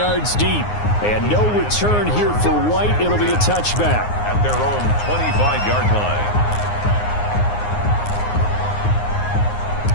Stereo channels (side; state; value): right; late; 9.6 ms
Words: deep. And no return here for White. It'll be a touchback. At their own 25-yard line.